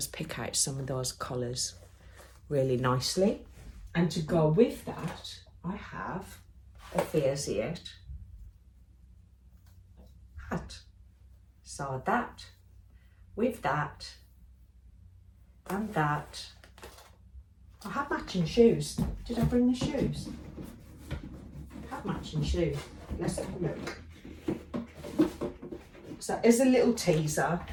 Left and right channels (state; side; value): identical; both; correlation 1.00